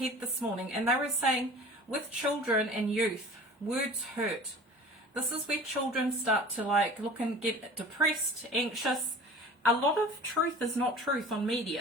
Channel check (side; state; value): both; normal; correlation 0.42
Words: this morning. And they were saying, with children and youth, words hurt. This is where children start to look and get depressed, anxious. A lot of truth is not truth on